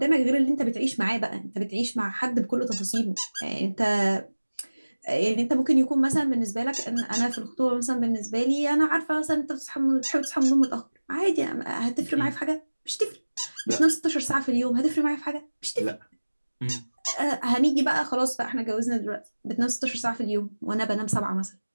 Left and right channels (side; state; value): both; inverted; correlation -1.00